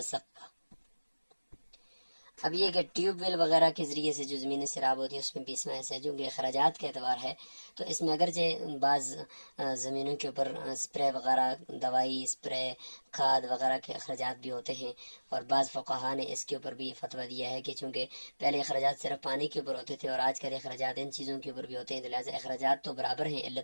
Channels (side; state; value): both; inverted; correlation -1.00